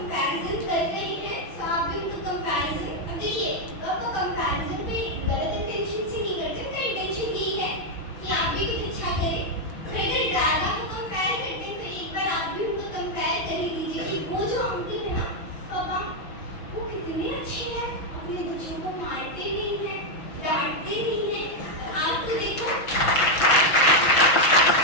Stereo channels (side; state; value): right; late; 6.0 ms